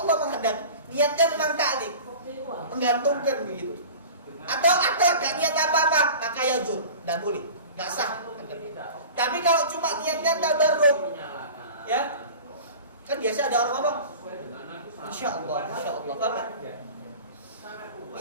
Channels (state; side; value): inverted; both; correlation -0.38